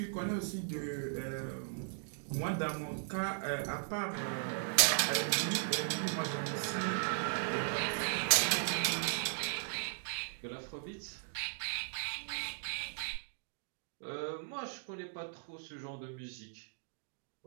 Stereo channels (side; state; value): left; silent; digital silence